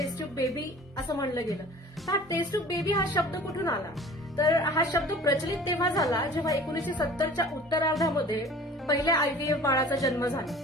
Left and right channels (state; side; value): normal; both; correlation 0.45